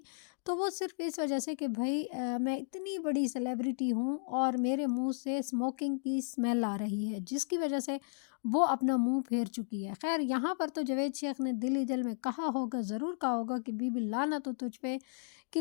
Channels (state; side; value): silent; right; digital silence